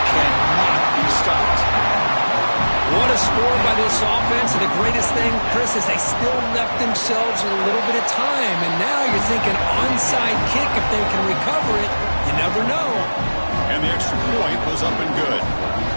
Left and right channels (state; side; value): inverted; both; correlation -1.00